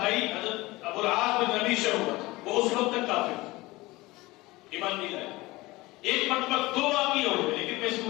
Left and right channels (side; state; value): right; quieter; 20.6 dB